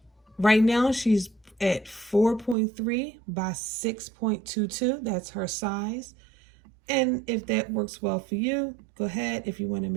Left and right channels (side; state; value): left; drops out; at 2.6 s